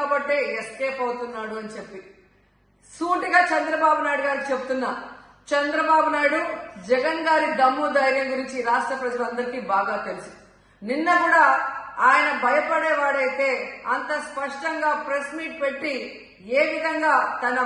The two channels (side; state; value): both; identical; correlation 1.00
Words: ఎస్కేప్ అవుతున్నాడు అని చెప్పి సూటిగా చంద్రబాబు నాయుడు గారికి చెప్తున్నా. చంద్రబాబు నాయుడు జగన్ గారి దమ్ము ధైర్యం గురించి రాష్ట్ర ప్రజలందరికీ బాగా తెలుసు. నిన్న కూడా ఆయన భయపడేవాడైతే అంత స్పష్టంగా ప్రెస్ మీట్ పెట్టి ఏ విధంగా తన